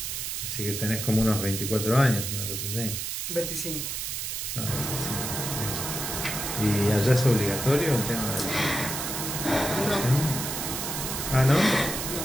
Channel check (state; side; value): noise; right; hiss, 4 dB below the sound